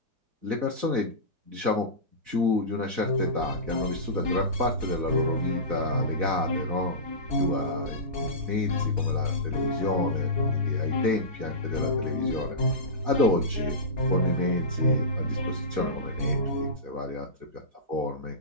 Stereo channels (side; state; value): left; late; 4.0 ms